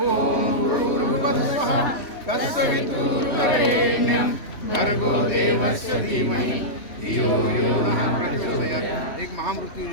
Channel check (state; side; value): late; right; 3.1 ms